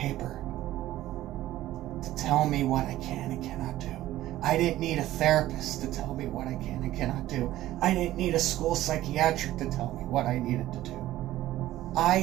to tell me what I can and cannot do. I didn't need a therapist to tell me what I can and cannot do. I didn't need a school psychiatric to tell me what I needed to do.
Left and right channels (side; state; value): left; quieter; 14.8 dB